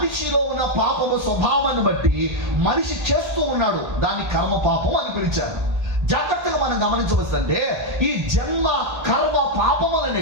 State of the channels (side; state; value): left; late; 1.3 ms